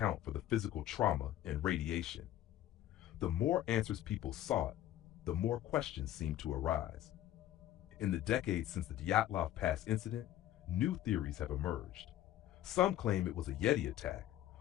for the physical trauma and radiation. The more answers people sought, the more questions seemed to arise. In the decades since the Dyatlov Pass incident, new theories have emerged. Some claim it was a Yeti attack,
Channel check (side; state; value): right; quieter; 13.0 dB